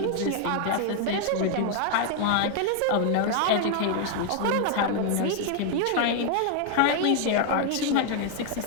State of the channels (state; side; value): different; both; correlation 0.00